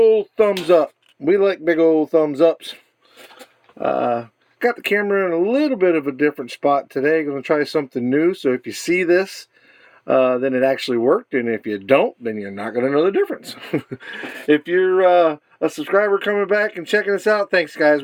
thumbs up. We like big old thumbs ups. Got the camera in a little bit of a different spot today. Going to try something new, so if you see this, then it actually worked, and if you don't, then you're not going to know the difference. If you're a subscriber coming back and checking us out, thanks guys,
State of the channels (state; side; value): identical; both; correlation 1.00